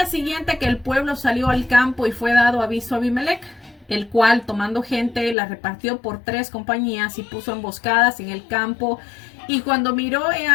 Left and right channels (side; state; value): right; drops out; at 5.4 s